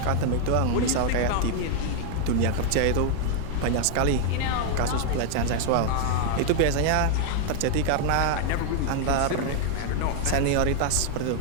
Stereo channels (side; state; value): both; different; correlation 0.00